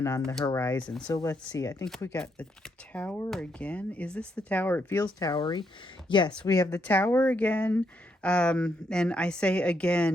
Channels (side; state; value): both; normal; correlation 0.77